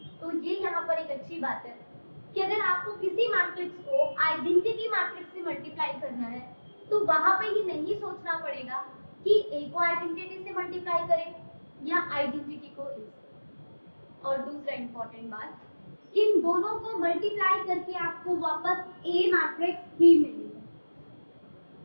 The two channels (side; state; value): both; inverted; correlation -1.00